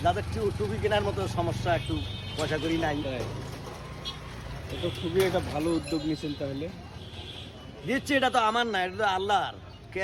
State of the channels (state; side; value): identical; both; correlation 1.00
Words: যাদের টুপি কেনার মতো সমস্যা, একটু পয়সা করি নাই। তাই? এটা খুবই একটা ভালো উদ্যোগ নিয়েছেন তাহলে। দিচ্ছি, এটা তো আমার না, এটা তো আল্লাহর।